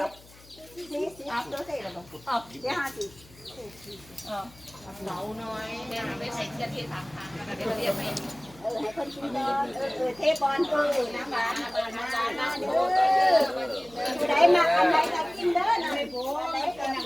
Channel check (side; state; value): left; noise; hum, 24 dB below the sound